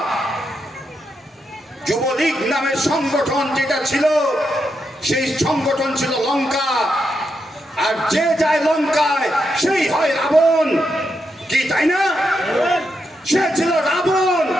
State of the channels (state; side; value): normal; both; correlation 0.83